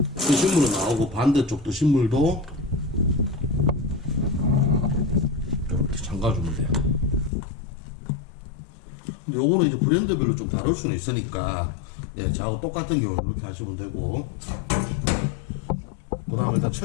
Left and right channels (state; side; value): drops out; right; at 7.3 s